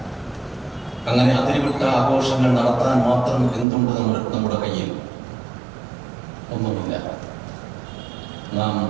അങ്ങനെ അതിരുവിട്ട ആഘോഷങ്ങൾ നടത്താൻ മാത്രം എന്തുണ്ട് നമ്മുടെ കയ്യിൽ? ഒന്നുമില്ല. നാം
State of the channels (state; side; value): drops out; left; at 3.7 s